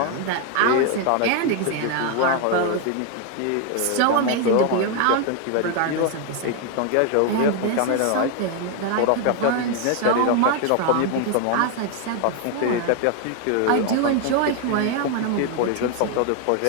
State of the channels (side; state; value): both; different; correlation 0.01